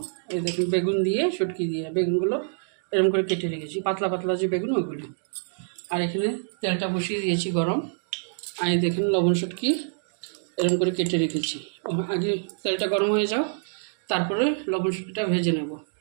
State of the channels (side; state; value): left; silent; digital silence